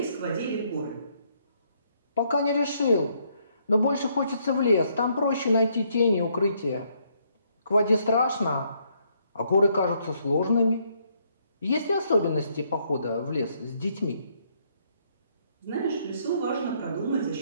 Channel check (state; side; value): inverted; both; correlation -0.71